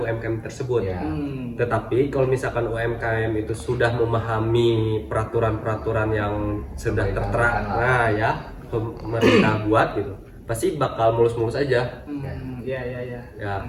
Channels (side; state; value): both; identical; correlation 1.00